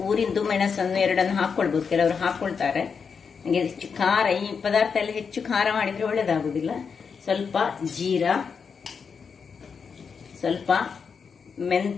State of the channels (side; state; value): right; quieter; 6.0 dB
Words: ಊರಿದ್ದು ಮೆಣಸನ್ನು 2 ಹಾಕೊಳ್ಬಹುದು, ಕೆಲವರು ಹಾಕೊಳ್ತಾರೆ. ನನಗೆ ಹೆಚ್ಚು ಖಾರ, ಈ ಪದಾರ್ಥ ಎಲ್ಲ ಹೆಚ್ಚು ಖಾರ ಮಾಡಿದ್ರೆ ಒಳ್ಳೇದಾಗುದಿಲ್ಲ. ಸ್ವಲ್ಪ ಜೀರಾ, ಸ್ವಲ್ಪ